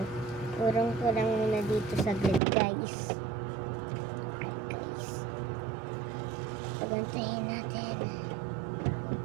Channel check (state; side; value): drops out; left; at 2.4 s